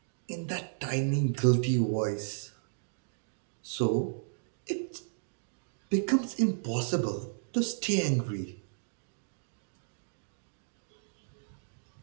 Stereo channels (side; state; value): left; silent; digital silence